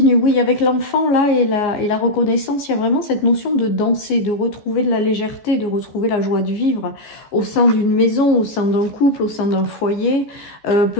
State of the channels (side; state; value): right; late; 14 ms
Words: oui, avec l'enfant là et la reconnaissance, il y a vraiment cette notion de danser, de retrouver de la légèreté, de retrouver la joie de vivre au sein d'une maison, au sein d'un couple, au sein d'un foyer,